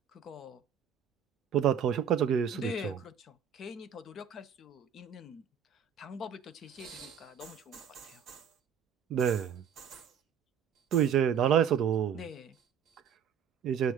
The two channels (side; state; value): left; quieter; 7.9 dB